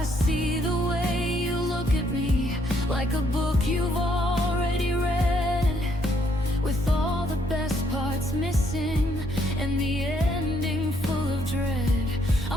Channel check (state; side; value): normal; both; correlation 0.70